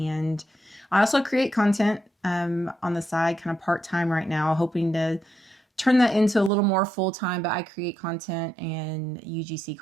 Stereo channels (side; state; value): left; drops out; at 6.5 s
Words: I also create content on the side, kind of part-time right now, hoping to turn that into a little more full-time, but I create content and UGC